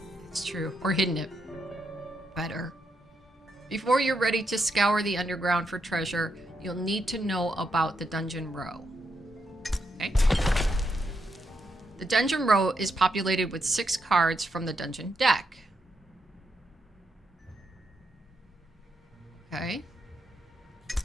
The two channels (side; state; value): both; normal; correlation 0.81